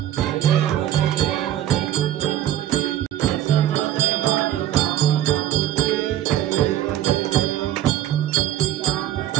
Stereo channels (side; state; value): left; quieter; 12.2 dB